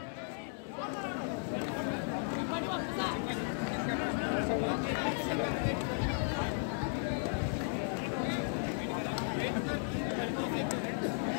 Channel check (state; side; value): silent; right; 54 dB below the other